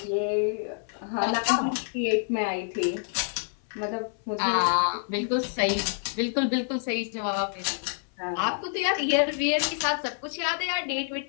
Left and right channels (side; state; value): right; silent; 60 dB below the other